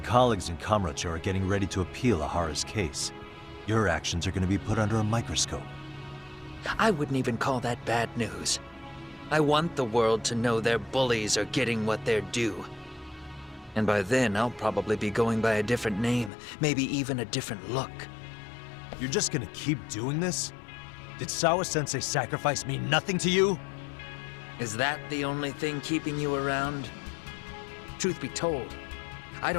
in Kamurocho are getting ready to appeal Ahara's case. Your actions are going to be put under a microscope. I wouldn't even call that bad news. I want the world to know their bullies are getting what they're due. And by then, I'll probably be going by a different name, maybe even a different look. You're just gonna keep doing this? Did Sawa-sensei sacrifice mean nothing to you? Is that the only thing keeping you around? Truth be told, I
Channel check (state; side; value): drops out; right; at 16.3 s